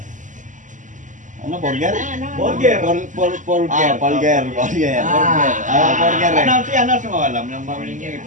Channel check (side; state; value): left; late; 0.37 ms